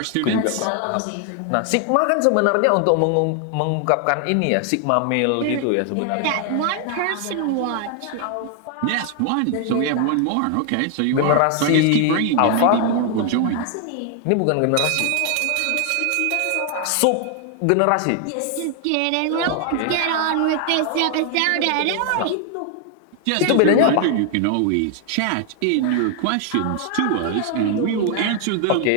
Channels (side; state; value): both; different; correlation 0.00